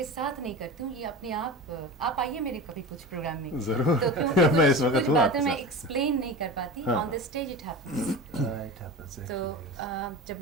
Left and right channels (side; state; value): both; normal; correlation 0.30